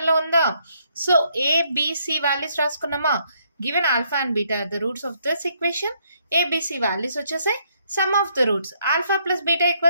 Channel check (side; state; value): both; inverted; correlation -0.71